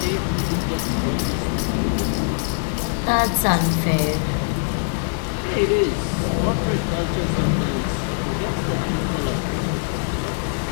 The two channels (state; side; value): silent; right; digital silence